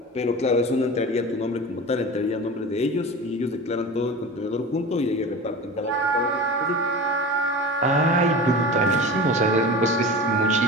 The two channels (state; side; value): normal; both; correlation 0.33